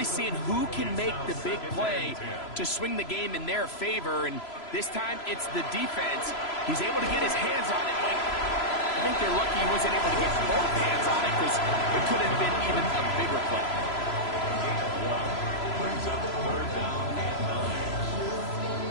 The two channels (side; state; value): right; late; 3.0 ms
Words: seeing who can make the big play to swing the game in their favor. And this time, it's the defense. He's able to get his hands on it. Like, I think they're lucky he wasn't able to get both hands on it because it could have been even a bigger play. Brings up third down and 9.